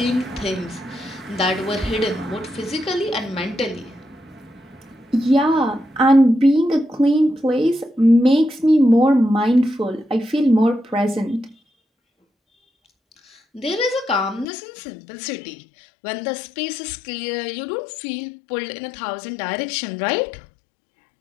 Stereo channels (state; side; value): drops out; right; at 14.5 s